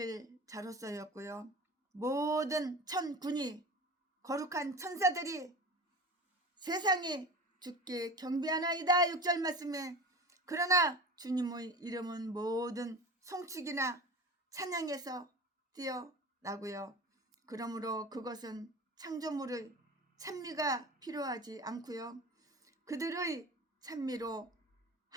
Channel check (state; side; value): normal; both; correlation 0.33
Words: 자로서였고요. 모든 천군이 거룩한 천사들이 세상이 주께 경배하나이다 6절 말씀에 그러나 주님의 이름은 모든 송축이나 찬양에서 뛰어나고요. 그러므로 그것은 창조물의 찬미가 필요하지 않고요. 그들의 찬미로